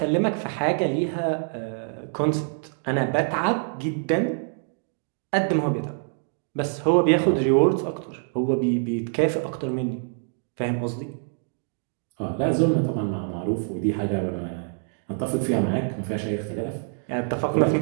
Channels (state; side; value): silent; left; 58 dB below the other